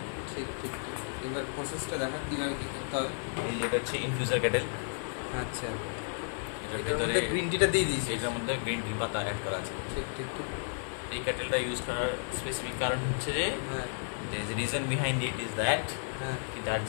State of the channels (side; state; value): right; silent; 56 dB below the other